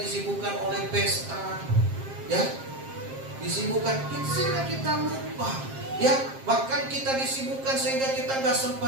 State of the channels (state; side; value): late; left; 7.5 ms